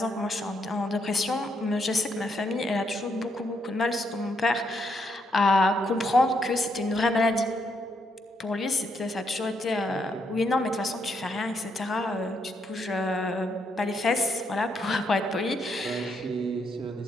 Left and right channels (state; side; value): normal; both; correlation 0.76